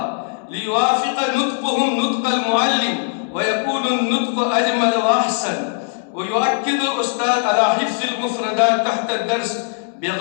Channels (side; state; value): right; silent; 66 dB below the other